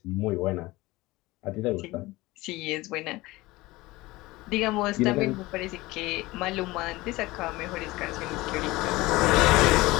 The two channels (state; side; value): quieter; right; 20.1 dB